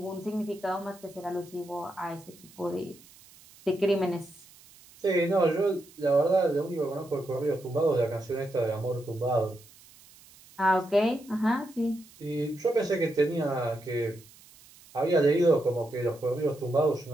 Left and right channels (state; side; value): noise; right; hiss, 24 dB below the sound